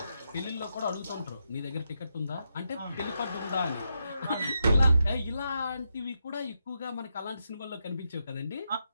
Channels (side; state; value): both; inverted; correlation -0.84